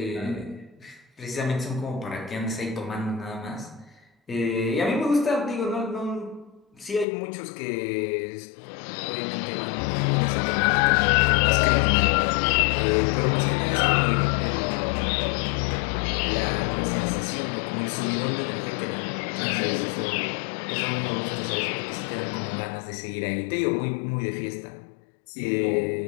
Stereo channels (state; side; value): drops out; right; at 7.1 s